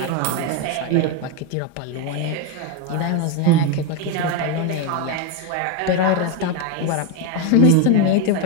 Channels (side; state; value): both; different; correlation 0.02